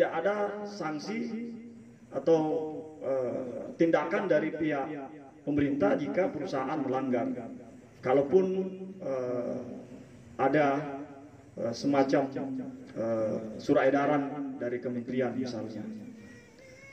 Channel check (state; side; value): identical; both; correlation 1.00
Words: ada sanksi atau tindakan dari pihak pemerintah jika perusahaan melanggar. Kalaupun ada semacam surat edaran dari kementerian misalnya.